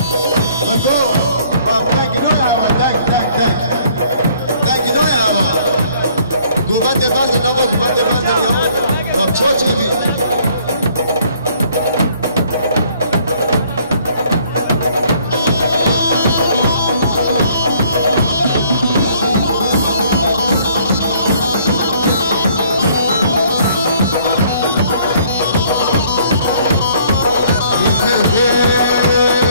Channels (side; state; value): both; inverted; correlation -0.61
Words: بگو دنگینوی همه دنگینوی همه گومنده بردن نما گومنده بردن یا چا چه بی